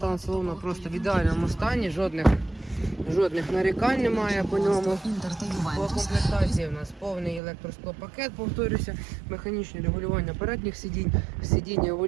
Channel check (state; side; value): drops out; left; at 7.4 s